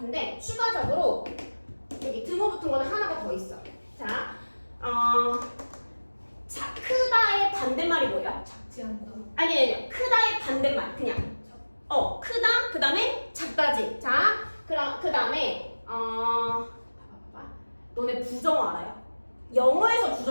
추가적으로 여기 등호 붙은 거는 하나가 더 있어. 자, 크다의 반대말이 뭐예요? 작지 않다. 아니 크다의 반대말 그냥 크다 그 다음에 작다지. 자, 그럼 그 다음에 너네 부정어 알아요? 영어에서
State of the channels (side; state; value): both; inverted; correlation -1.00